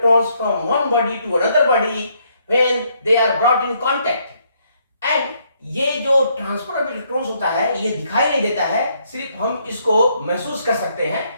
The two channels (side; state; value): both; inverted; correlation -0.71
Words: from one body to another body when they are brought in contact. And ये जो ट्रांसफर ऑफ इलेक्ट्रॉन्स होता है ये दिखाई नहीं देता है, सिर्फ हम इसको महसूस कर सकते हैं।